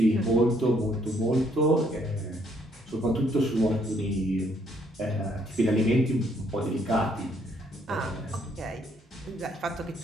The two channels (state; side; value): normal; both; correlation 0.69